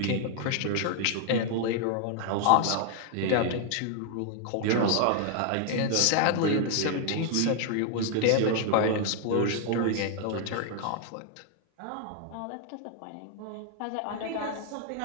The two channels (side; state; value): both; different; correlation 0.00